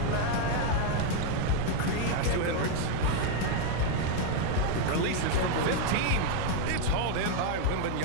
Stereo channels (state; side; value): different; both; correlation 0.01